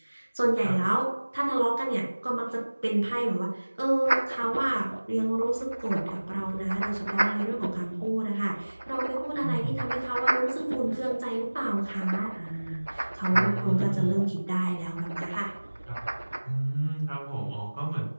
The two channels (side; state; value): both; inverted; correlation -1.00